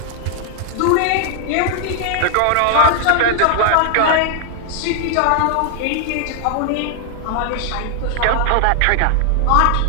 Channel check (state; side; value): different; both; correlation 0.00